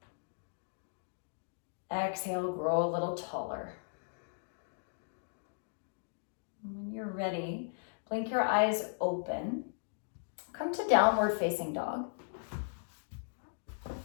Exhale, grow a little taller. When you're ready, blink your eyes open. Come to downward facing dog.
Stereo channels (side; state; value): right; silent; digital silence